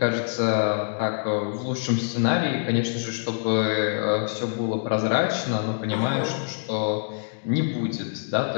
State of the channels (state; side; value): silent; right; digital silence